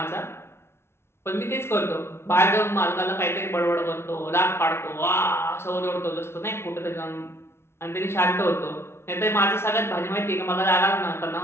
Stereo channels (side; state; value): right; late; 0.12 ms